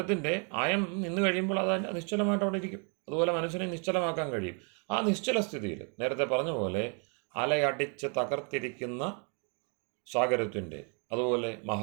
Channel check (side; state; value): left; quieter; 38.1 dB